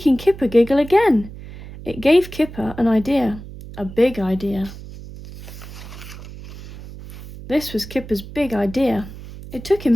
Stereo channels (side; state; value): right; noise; hum, 14 dB below the sound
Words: Kipper giggle again. It gave Kipper an idea, a big idea. This was Kipper's big idea. It took him